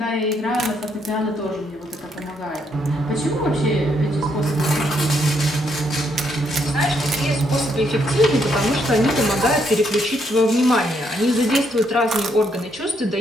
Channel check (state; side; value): normal; both; correlation 0.74